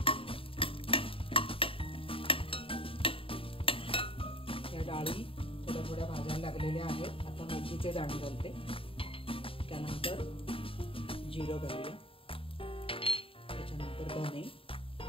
या डाळी थोड्या थोड्या भाजायला लागलेल्या आहेत. आता मेथीचे दाणे घालते, त्यानंतर जिरं घालूया, त्याच्यानंतर धने,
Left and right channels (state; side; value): late; right; 0.26 ms